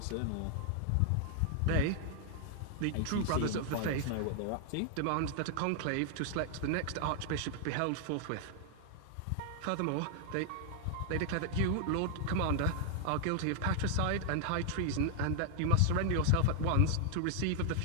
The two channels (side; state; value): both; different; correlation 0.00